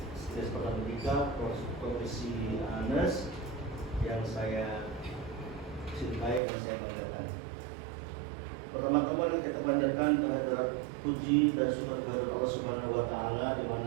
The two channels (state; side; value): drops out; left; at 6.4 s